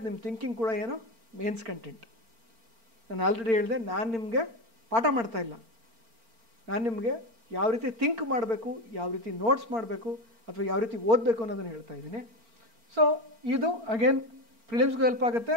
ನಿಮ್ಮ ಥಿಂಕಿಂಗ್ ಕೂಡ ಏನು ಮೇನ್ಸ್ ಕಂಟೆಂಟ್. ನಾನು ಆಲ್ರೆಡಿ ಹೇಳಿದೆ, ನಾನು ನಿಮಗೆ ಪಾಠ ಮಾಡ್ತಾ ಇಲ್ಲ, ನಾನು ನಿಮಗೆ ಯಾವ ರೀತಿ ಥಿಂಕ್ ಮಾಡಬೇಕು, ಯಾವ ರೀತಿ ನೋಟ್ಸ್ ಮಾಡಬೇಕು ಅಥವಾ ಯಾವ ರೀತಿ ಓದಬೇಕು ಅನ್ನೋದನ್ನು ಹೇಳ್ತಾ ಇದ್ದೀನಿ. ಸೊ ಇದು ಅಗೇನ್ ಪ್ರಿಲಿಮ್ಸ್ಗೂ ಹೆಲ್ಪ್ ಆಗುತ್ತೆ,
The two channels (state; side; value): late; left; 4.4 ms